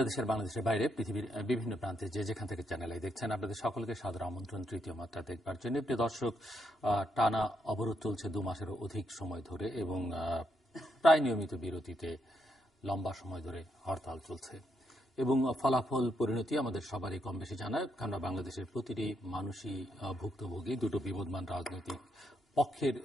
বাইরে পৃথিবীর বিভিন্ন প্রান্তে যে যেখান থেকে চ্যানেল দেখছেন আপনাদের সকলকে সাদর আমন্ত্রণ তৃতীয় মাত্রা দেখবার জন্য। প্রিয় দর্শক, টানা অবরোধ চলছে 2 মাসেরও অধিক সময় ধরে এবং প্রায় নিয়মিত বিরতিতে লম্বা সময় ধরে হরতাল চলছে এবং ফলাফল পরিণতি আমাদের সবারই কম বেশি জানায়। কেননা বাংলাদেশের প্রতিটি মানুষই ভুক্তভোগী দুটো বিবদমান রাজনৈতিক পক্ষের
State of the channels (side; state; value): both; normal; correlation 0.78